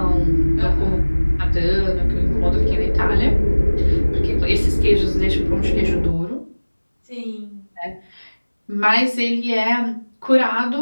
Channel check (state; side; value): inverted; both; correlation -1.00